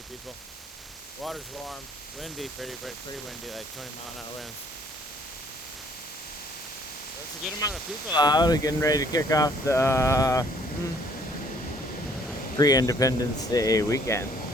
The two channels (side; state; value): both; normal; correlation 0.61